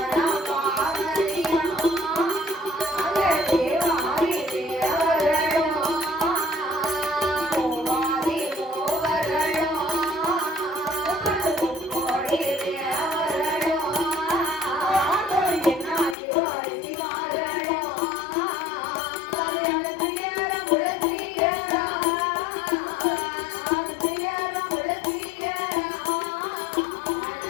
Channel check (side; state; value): right; drops out; at 16.2 s